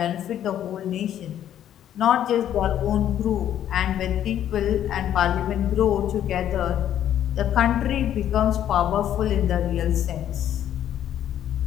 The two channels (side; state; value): right; quieter; 10.8 dB